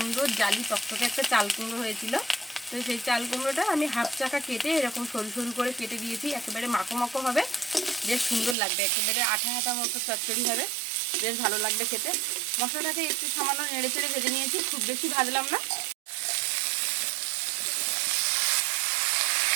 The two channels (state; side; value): drops out; left; at 8.6 s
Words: জালি টকটকে একটা চাল কুমড়ো হয়েছিল। তো সেই চাল কুমড়োটা আমি হাফ চাকা কেটে এরকম সরু সরু করে কেটে দিয়েছি। একেবারে মাখো মাখো হবে, বেশ সুন্দর লাগবে, একেবারে আঠা আঠা মতো চচ্চড়ি হবে, বেশ ভালো লাগবে খেতে। মশলাটাকে একটু সামান্য নেড়ে চেড়ে ভেজে নিয়েছি, খুব বেশি ভাজলাম না।